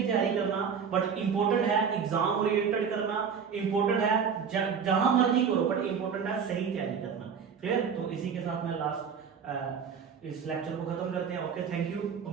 तैयारी करना, बट इंपॉर्टेंट है एग्जाम ओरिएंटेड करना, इंपॉर्टेंट है जहां मर्जी करो, बट इंपॉर्टेंट है सही तैयारी करना। क्लियर? तो इसी के साथ मैं लास्ट इस लेक्चर को खत्म करते हैं। Okay, thank you.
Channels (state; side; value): quieter; left; 6.7 dB